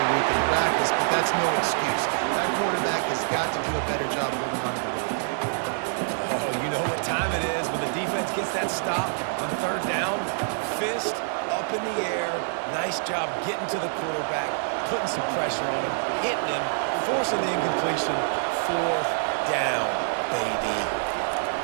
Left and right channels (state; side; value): silent; left; digital silence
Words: week in practice, but that's no excuse. That quarterback has got to do a better job holding on to the ball. Oh, you know what time it is when the defense gets that stop on third down. Fist up in the air. Nice job getting to the quarterback, putting some pressure on him, hitting him, forcing the incompletion. Fourth down, baby.